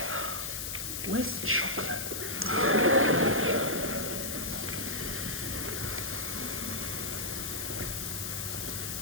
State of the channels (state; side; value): noise; left; hiss, 4 dB below the sound